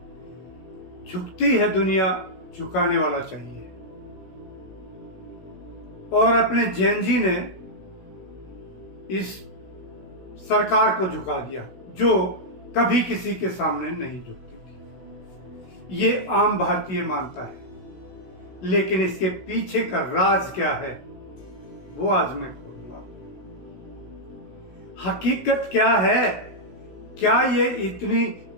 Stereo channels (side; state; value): right; late; 16 ms